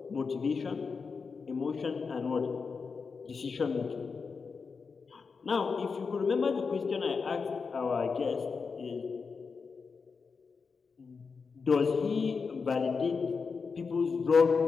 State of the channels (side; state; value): right; quieter; 5.1 dB